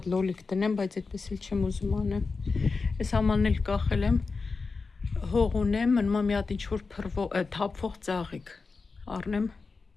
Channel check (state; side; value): quieter; right; 4.3 dB